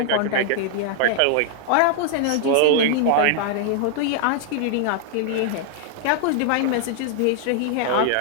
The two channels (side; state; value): both; different; correlation -0.01